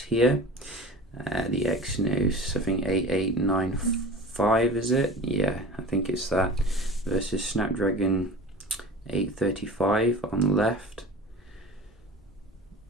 The Exynos, I think 8895 is it? Yeah, I think it's that, versus Snapdragon 835 on the left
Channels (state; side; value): normal; both; correlation 0.38